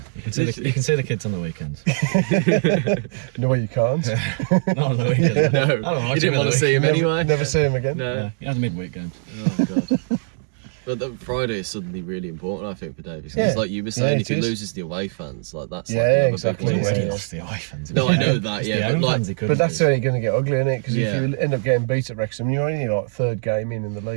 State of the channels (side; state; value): left; silent; digital silence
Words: you can see the kids on the weekends. No way you can't. Not on the weekends. No, you didn't want to see him anyway. Never see him again. No, you have the midweek games. Oh god. But the Friday is suddenly really important, I think, for Davies. Because, like you were saying, if he loses the away fans, like that's like another exactly. big He's win. already lost the away fans. No, I know that. But that's only going to get ugly, isn't it? Because if you end up getting beat at Wrexham, you're only like third game in the